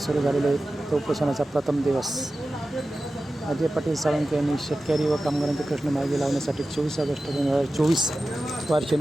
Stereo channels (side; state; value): both; normal; correlation 0.94